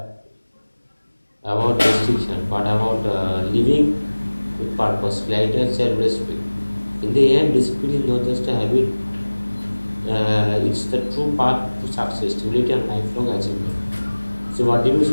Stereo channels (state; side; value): inverted; both; correlation -1.00